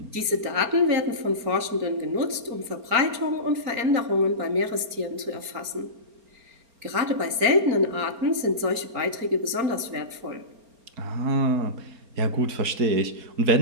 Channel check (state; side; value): late; left; 4.4 ms